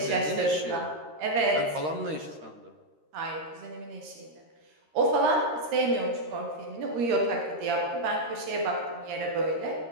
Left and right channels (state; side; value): late; left; 13 ms